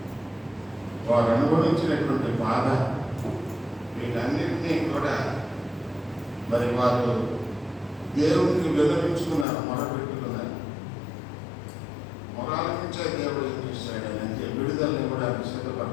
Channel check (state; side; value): drops out; right; at 9.5 s